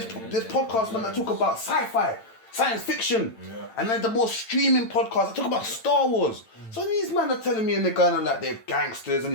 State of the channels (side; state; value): right; late; 8.9 ms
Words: podcasts man that talk about sci-fi. Science fiction, and then the more streaming podcasts, I talk about Star Wars. So these men are telling me, and they're going on like they're gangsters and